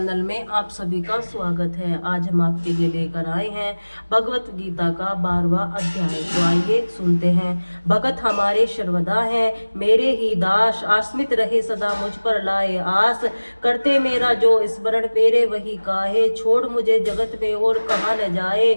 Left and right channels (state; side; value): inverted; both; correlation -1.00